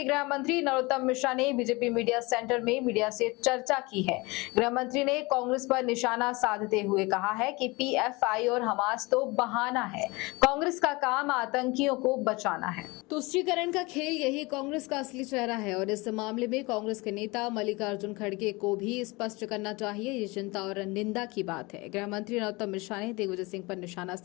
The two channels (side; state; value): right; quieter; 24.5 dB